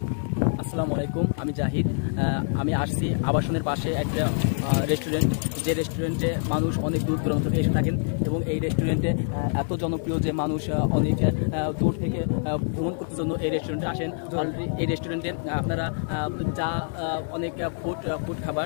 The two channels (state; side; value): silent; right; 61 dB below the other